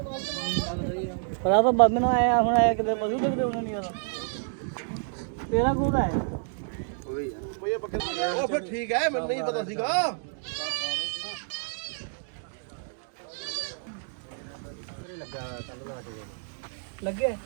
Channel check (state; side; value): silent; left; digital silence